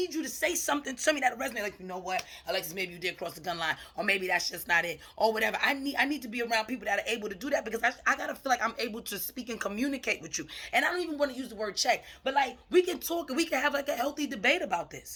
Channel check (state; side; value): identical; both; correlation 1.00